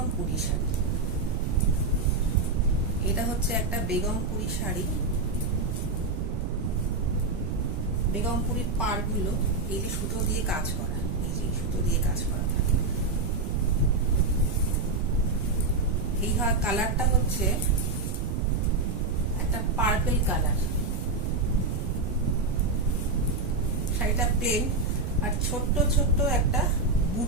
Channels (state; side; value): noise; right; rumble, 2 dB below the sound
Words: শাড়ি। এটা হচ্ছে একটা বেগমপুরি শাড়ি। বেগমপুরির পাড়গুলো এই যে সুতো দিয়ে কাজ করা, এই যে সুতো দিয়ে কাজ করা থাকে। এই কালারটা হচ্ছে একটা পার্পল কালার। শাড়িটা প্লেন আর ছোট্ট ছোট্ট একটা